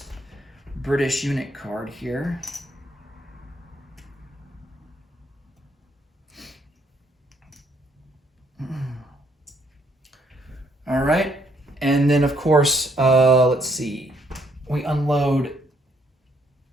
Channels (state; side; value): normal; both; correlation 0.70